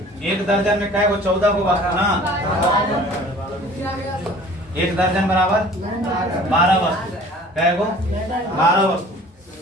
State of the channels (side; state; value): both; normal; correlation 0.48